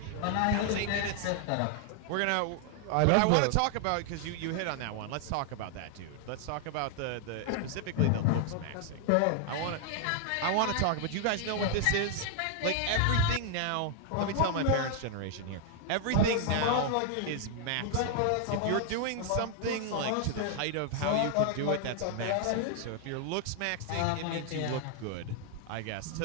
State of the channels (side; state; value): both; different; correlation 0.00